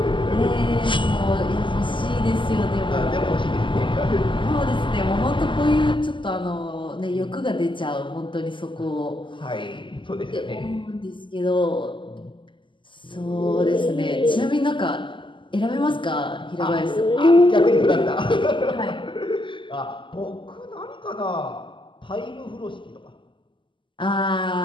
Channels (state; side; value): late; right; 0.24 ms